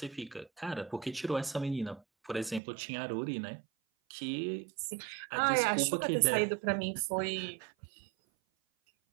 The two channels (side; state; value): left; drops out; at 2.6 s